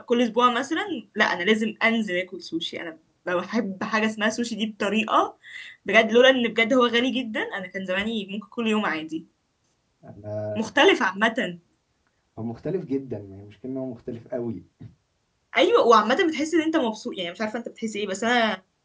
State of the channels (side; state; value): both; identical; correlation 1.00